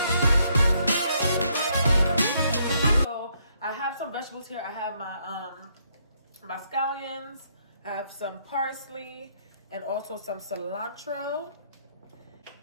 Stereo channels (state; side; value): inverted; both; correlation -0.72